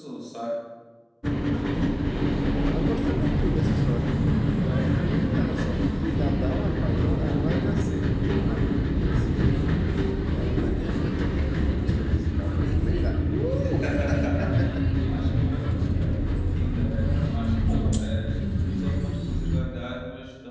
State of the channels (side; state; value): both; identical; correlation 1.00